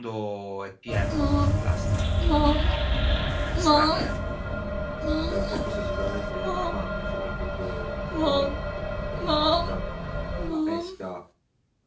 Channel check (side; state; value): both; identical; correlation 1.00